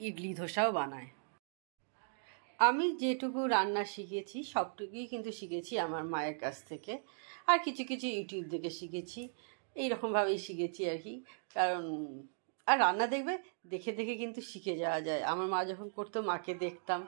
ইডলি ধোসাও বানায়। আমি যেটুকু রান্না শিখেছি সবটুকুই কিন্তু শিখেছি আমার মায়ের কাছ থেকে, আর কিছু কিছু ইউটিউব থেকে শিখেছি, এইরকমভাবেই শিখেছি আর কি। কারণ আর রান্না দেখে দেখে কিন্তু শিখে যাওয়া যায়। আমার মা যখন করতো মাকে দেখতাম,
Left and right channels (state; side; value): silent; left; digital silence